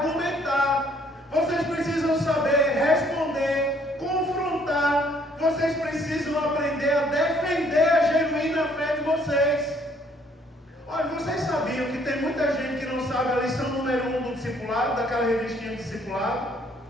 vocês precisam saber responder, confrontar, vocês precisam aprender a defender a genuína fé de vocês. Olha, vocês sabiam que tem muita gente que não sabe a lição número 1 do discipulado, daquela revistinha do discipulado?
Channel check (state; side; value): normal; both; correlation 0.64